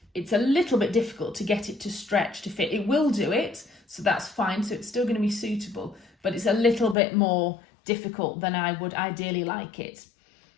a little bit difficult to get it to stretch to fit. It will do it, so that's fine. So it's still going to be suitable, but it's a little bit more difficult than I would ideally like it.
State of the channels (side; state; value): right; drops out; at 7.0 s